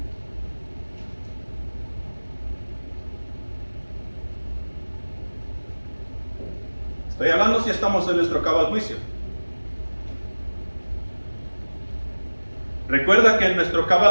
Estoy hablando si estamos en nuestro cabal juicio. Recuerda que en nuestro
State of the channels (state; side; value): inverted; both; correlation -1.00